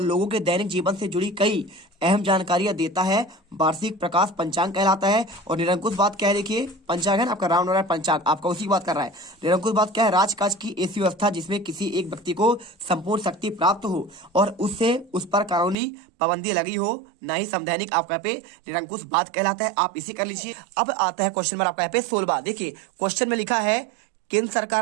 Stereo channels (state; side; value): drops out; left; at 15.8 s